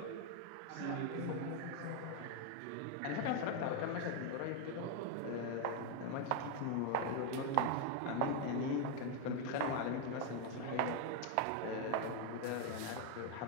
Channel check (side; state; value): both; different; correlation 0.01